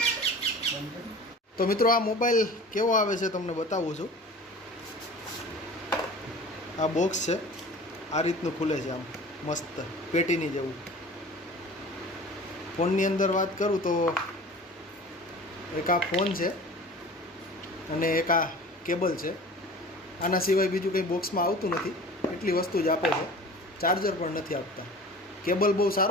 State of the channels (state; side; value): normal; both; correlation 0.40